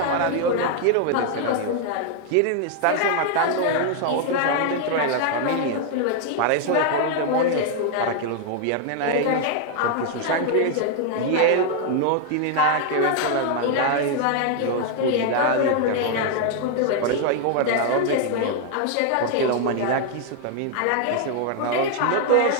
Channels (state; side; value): different; both; correlation 0.00